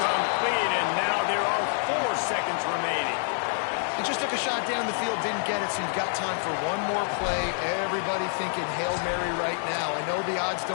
and now there are 4 seconds remaining. He just took a shot down the field, didn't get it, so you've got time for one more play. Everybody thinking Hail Mary right now. I know the odds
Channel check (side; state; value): right; silent; 60 dB below the other